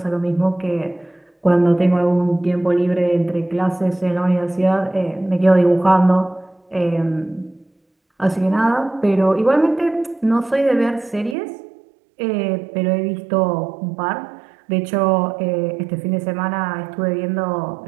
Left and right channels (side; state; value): left; drops out; at 11.4 s